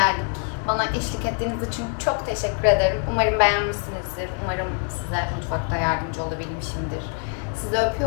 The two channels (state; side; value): quieter; right; 39.9 dB